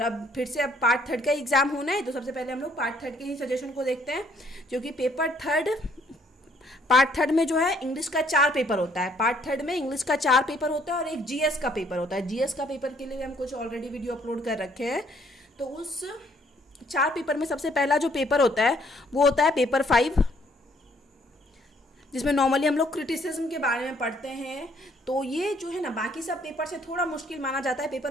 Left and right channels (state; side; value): normal; both; correlation 0.64